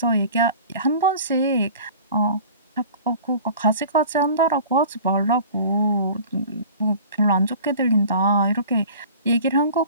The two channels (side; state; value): both; inverted; correlation -0.43